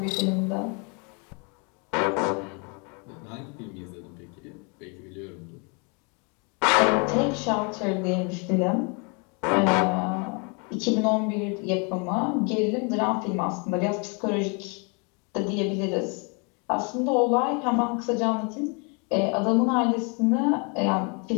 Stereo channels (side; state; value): right; quieter; 34.0 dB